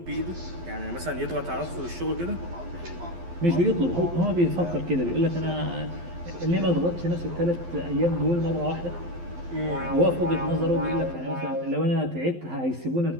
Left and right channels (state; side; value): late; left; 12 ms